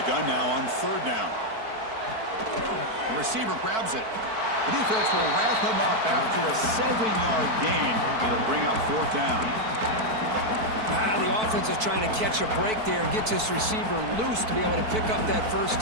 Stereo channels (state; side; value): late; left; 4.5 ms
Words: gun now on 3rd down. The receiver grabs it. The defense will wrap him up after a 7-yard gain. It'll bring up 4th down. The offense is trying to catch a break there and get this receiver loose to be able to pick up that 1st